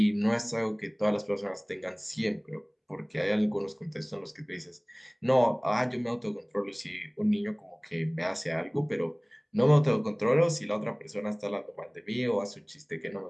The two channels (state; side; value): identical; both; correlation 1.00